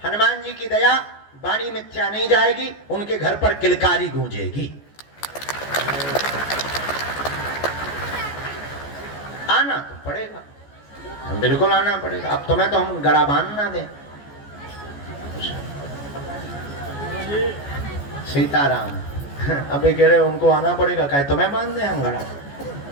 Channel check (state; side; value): late; right; 14 ms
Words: हनुमान जी की दया, वाणी मिथ्या नहीं जाएगी, उनके घर पर किलकारी गूंजेगी। आना तो पड़ेगा, बिल्कुल आना पड़ेगा। अब तुम्हें तो हम गड़ा बांध ना दें। सीताराम अबे कह रहे उनको आना पड़ेगा, कहे तुम्हें बांध दें हम गड़ा।